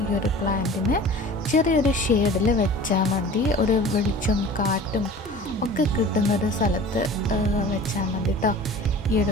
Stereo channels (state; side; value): normal; both; correlation 0.41